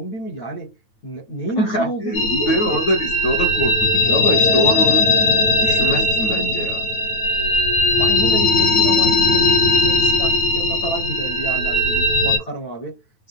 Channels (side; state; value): right; late; 9.2 ms